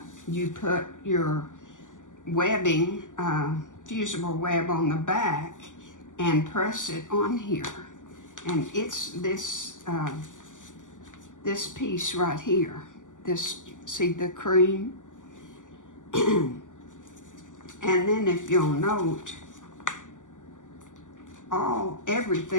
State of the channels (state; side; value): late; right; 0.87 ms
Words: you put your webbing, fusible web on the back and press it on here. And it's this this piece right here. This, see the cream? And then if you'll note,